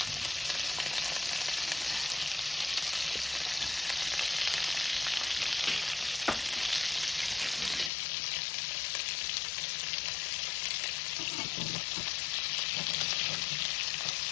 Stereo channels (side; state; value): right; drops out; at 7.9 s